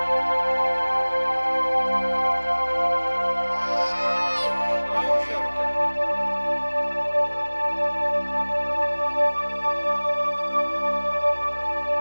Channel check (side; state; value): both; inverted; correlation -1.00